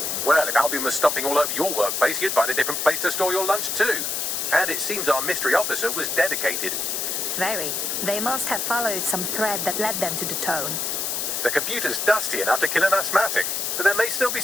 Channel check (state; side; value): noise; left; hiss, 1 dB below the sound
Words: Well, if Albion was stomping all over your workplace, you'd find a different place to store your lunch too. And it seems our mystery officer was dedicated. Very. They must have followed some thread that led them to the tone. The computer's dusty enough to kill an asthmatic, but there may still be